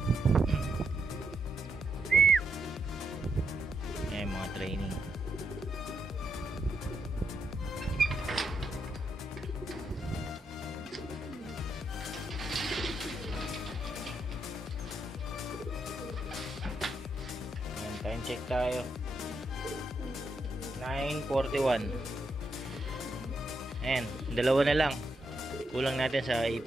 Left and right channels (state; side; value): normal; both; correlation 0.80